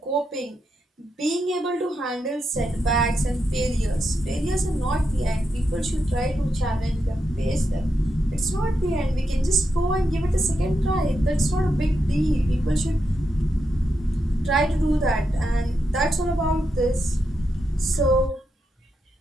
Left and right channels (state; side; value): normal; both; correlation 0.85